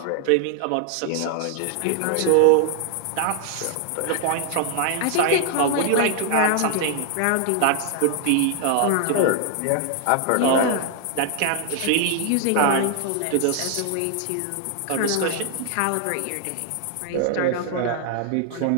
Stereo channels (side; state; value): both; different; correlation 0.00